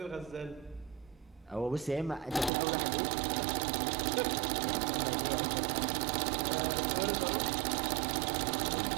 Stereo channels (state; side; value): drops out; left; at 2.5 s